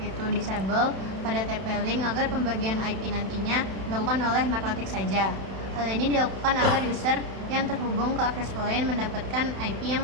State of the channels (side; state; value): left; late; 31 ms